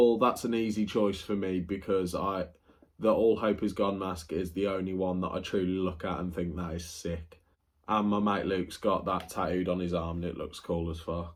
that's an easy choice for me because the All Hope Is Gone mask is the only one that I truly look at and think that is sick. And my mate Luke's got that tattooed on his arm and it looks cool as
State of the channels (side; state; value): both; identical; correlation 1.00